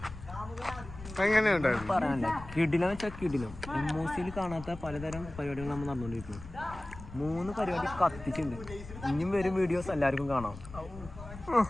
എങ്ങനെയുണ്ടായിരുന്നു? പറയാനുണ്ട്. കിടിലം വെച്ചാൽ കിടിലം. എമ്മോസിയിൽ കാണാത്ത പലതരം പരിപാടികൾ നമ്മൾ നടന്നുകൊണ്ടിരിക്കുന്നു. 3 പരിപാടി കത്തിച്ചുണ്ട്. ഇനിയും വരും വീഡിയോസ് എല്ലാവർക്കും കാണാം.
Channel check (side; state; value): left; noise; rumble, 14 dB below the sound